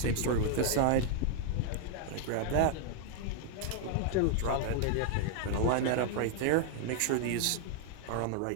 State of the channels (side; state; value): both; different; correlation 0.00